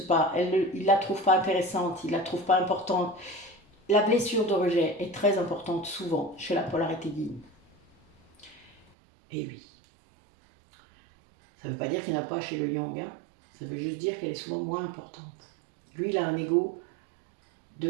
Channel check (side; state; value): left; drops out; at 8.9 s